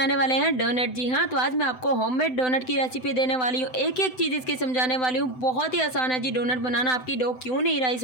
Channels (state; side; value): late; right; 7.9 ms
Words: वाले हैं डोनट। जी हाँ, तो आज मैं आपको होममेड डोनट की रेसिपी देने वाली हूँ। एक एक चीज़ इसकी समझाने वाली हूँ। बहुत ही आसान है जी डोनट बनाना। आपकी डो क्यों नहीं राइस